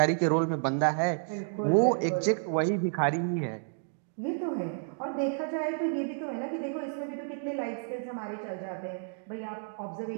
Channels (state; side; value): silent; left; digital silence